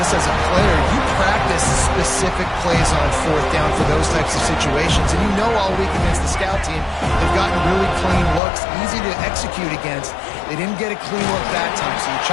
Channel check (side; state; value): right; drops out; at 8.4 s